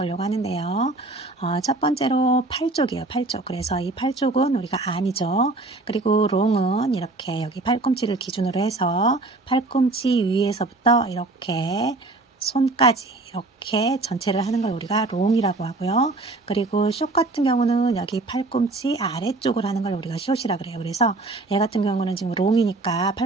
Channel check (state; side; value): quieter; left; 3.2 dB